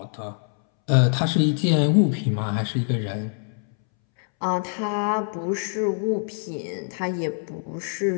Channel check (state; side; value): silent; right; 62 dB below the other